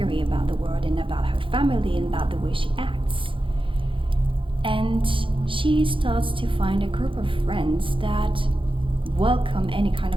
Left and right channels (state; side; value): late; left; 0.25 ms